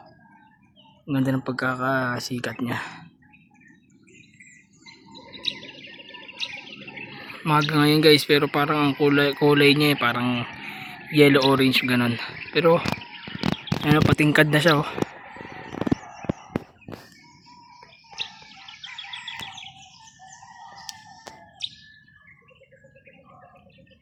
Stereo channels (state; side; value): identical; both; correlation 1.00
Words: Ang ganda ng pagkakasikat niya. Maga ngayon guys, pero parang ang kulay niya parang yellow orange ganon. Pero ano, patingkad na siya, oh.